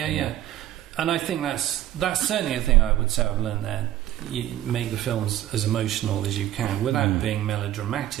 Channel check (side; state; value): left; quieter; 13.2 dB